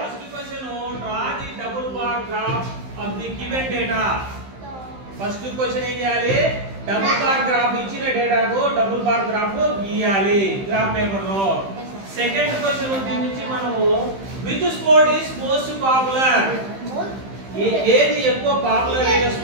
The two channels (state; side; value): late; left; 15 ms